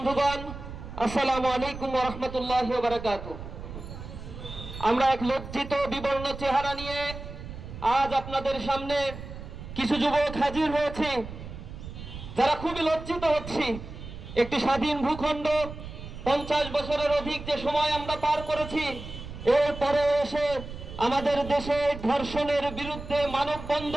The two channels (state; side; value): noise; right; rumble, 11 dB below the sound